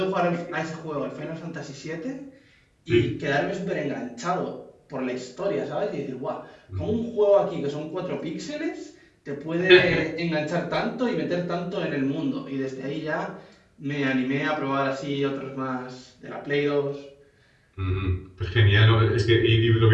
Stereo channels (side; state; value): both; identical; correlation 1.00